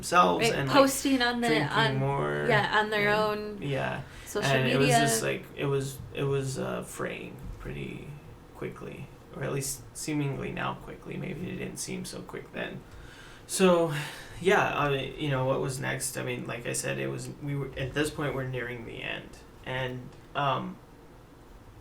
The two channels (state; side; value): identical; both; correlation 1.00